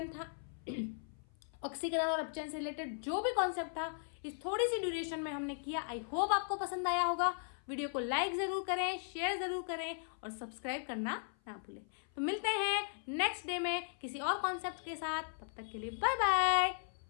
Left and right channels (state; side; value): silent; right; 53 dB below the other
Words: था। ऑक्सीकरण और अपचयन से रिलेटेड जो भी कॉन्सेप्ट था इस थोड़ी सी ड्यूरेशन में हमने किया। आई होप आपको पसंद आया होगा। वीडियो को लाइक जरूर करें, शेयर जरूर करें और सब्सक्राइब करना ना भूलें। तो मिलते हैं नेक्स्ट डे में किसी और कॉन्सेप्ट के साथ। तब तक के लिए बाय बाय,